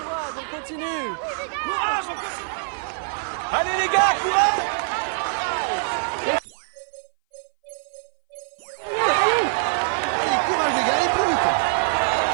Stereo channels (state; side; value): silent; left; 59 dB below the other